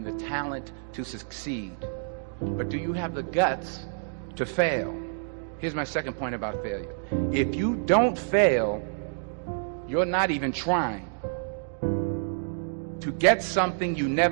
the talent to succeed. But do you have the guts to fail? Here's my second point about failure. If you don't fail, you're not even trying. To get something you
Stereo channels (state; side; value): silent; left; digital silence